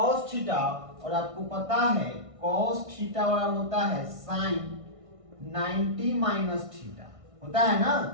थीटा, और आपको पता है कॉस थीटा बराबर होता है साइन 90 माइनस थीटा, होता है ना,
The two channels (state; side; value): late; left; 1.5 ms